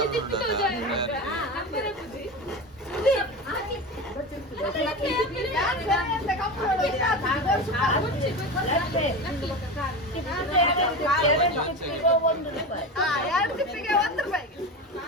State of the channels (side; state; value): both; normal; correlation 0.25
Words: ತಿಪ್ಪಿತು ಅಂದ್ರೆ ಬುದ್ಧಿ ಎರಡು ತಿಪ್ಪಿಗೆ 1 ರೂಪಾಯಿ